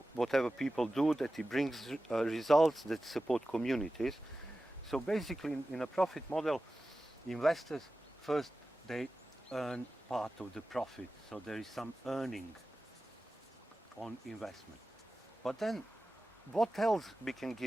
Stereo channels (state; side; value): normal; both; correlation 0.95